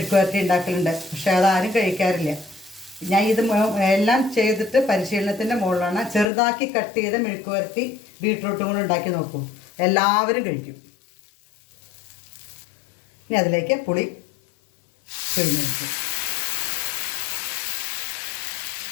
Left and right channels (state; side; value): drops out; right; at 6.2 s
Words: ഉണ്ടാക്കലുണ്ട്. പക്ഷേ അതാരും കഴിക്കാറില്ല. ഞാൻ ഇത് എല്ലാം ചെയ്തിട്ട് പരിശീലനത്തിൻ്റെ മുകളിലാണ്. ചെറുതാക്കി കട്ട് ചെയ്ത് മെഴുക്കുവരട്ടി ബീട്രൂട്ടും കൂടെ ഉണ്ടാക്കി നോക്കൂ, എല്ലാവരും കഴിക്കും. ഇനി അതിലേക്ക് പുളി പിഴിഞ്ഞെടുക്കും.